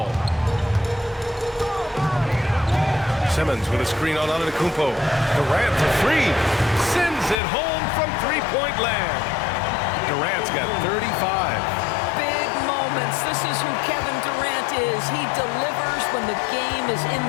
Simmons with a screen on Antetokounmpo. Durant for 3. Sends it home from three-point land. Durant's got 35. Big moments. This is who Kevin Durant is. He delivers when the game is in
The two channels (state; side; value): drops out; right; at 7.4 s